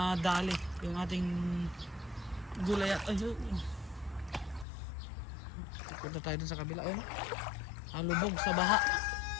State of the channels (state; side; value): drops out; right; at 4.7 s